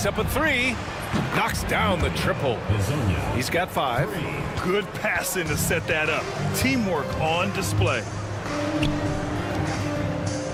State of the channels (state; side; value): identical; both; correlation 1.00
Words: up a three. Knocks down the triple. He's got 5. Good passing to set that up. Teamwork on display.